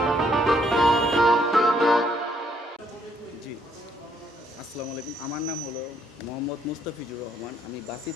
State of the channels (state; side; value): normal; both; correlation 0.69